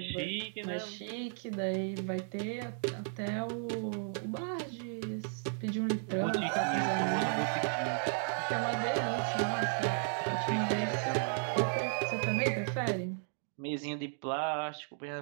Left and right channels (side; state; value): left; silent; 55 dB below the other